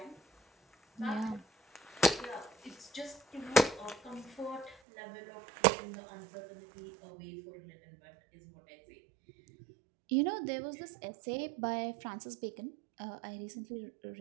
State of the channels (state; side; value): drops out; left; at 4.8 s